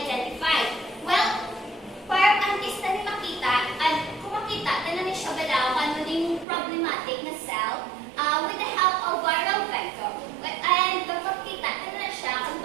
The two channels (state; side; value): drops out; left; at 6.5 s